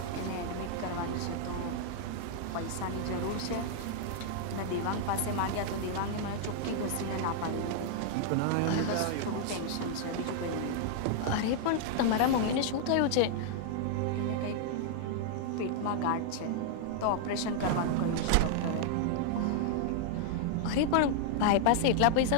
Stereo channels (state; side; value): different; both; correlation -0.01